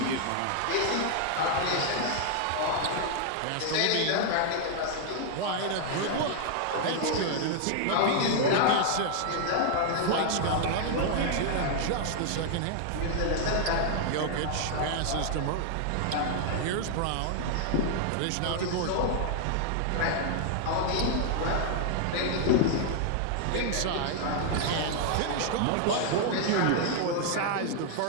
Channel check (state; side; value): different; both; correlation 0.00